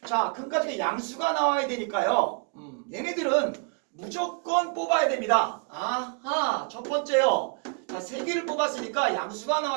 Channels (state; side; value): quieter; left; 37.4 dB